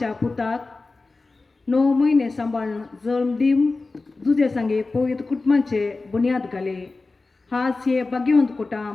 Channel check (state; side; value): quieter; right; 3.6 dB